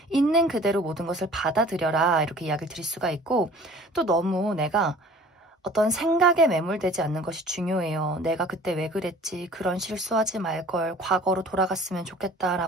있는 그대로 모든 것을 받아들여라. 이렇게 이야기를 드릴 수가 있고 또 너무 내가 어떤 생각에 매몰되지 않는 것이 중요해요. 내가 그때 왜 그랬지? 그런 실수하지 말걸. 과거로 돌아갔으면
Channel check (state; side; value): normal; both; correlation 0.48